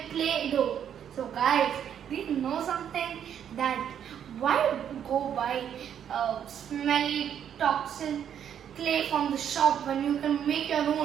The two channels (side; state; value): left; quieter; 9.1 dB